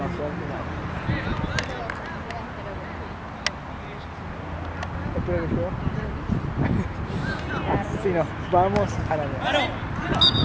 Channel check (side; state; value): both; identical; correlation 1.00